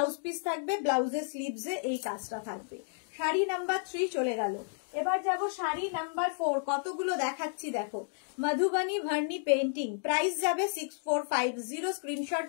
পিস থাকবে, ব্লাউজের স্লিভসে এই কাজটা থাকবে। শাড়ি নাম্বার 3 চলে গেল। এবার যাব শাড়ি নাম্বার 4। কতগুলো দেখাচ্ছি দেখো। মধুবনী ভার্নি পেন্টিং, প্রাইস যাবে 6450। স্ক্রিনশট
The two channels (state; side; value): silent; right; digital silence